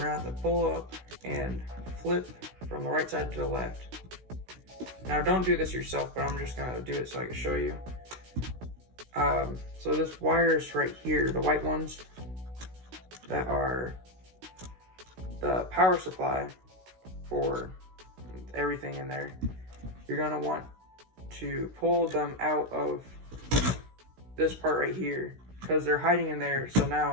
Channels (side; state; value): left; late; 16 ms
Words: gonna have to pull up and flip from the right side to the left. Now don't do this yourself, but I'm just gonna do it so I can show you. So this wires right here, the white ones that are the power supply for everything in there, you're gonna want to pull them out of this part right here because they're hiding in there. So